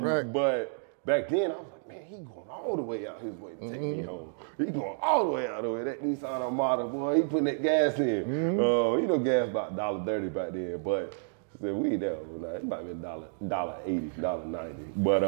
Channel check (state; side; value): silent; left; digital silence